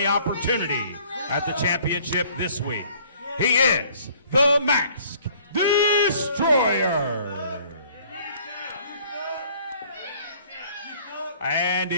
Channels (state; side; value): inverted; both; correlation -0.56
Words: opportunity at the championship this week. He is the Mask Destroyer. And